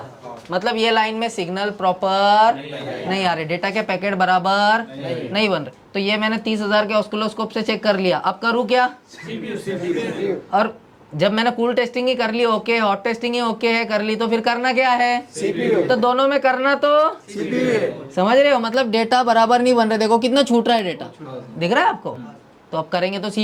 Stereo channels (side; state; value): both; identical; correlation 1.00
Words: मतलब ये लाइन में सिग्नल प्रॉपर नहीं आ रहे, डेटा के पैकेट बराबर नहीं बन रहे। तो ये मैंने 30,000 के ऑस्किलोस्कोप से चेक कर लिया। अब करूँ क्या? और जब मैंने कूल टेस्टिंग ही कर ली ओके, हॉट टेस्टिंग ही ओके है कर ली, तो फिर करना क्या है? तो दोनों में करना तो समझ रहे हो, मतलब डेटा बराबर नहीं बन रहे। देखो कितना छूट रहा है डेटा, दिख रहा है आपको? तो अब करेंगे तो